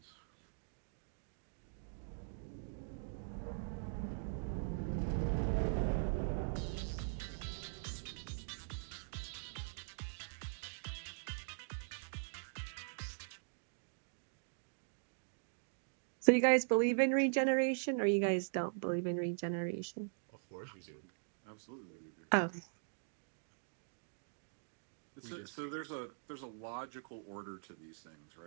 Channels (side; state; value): left; silent; digital silence